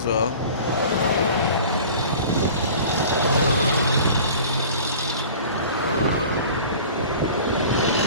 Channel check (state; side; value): inverted; both; correlation -0.42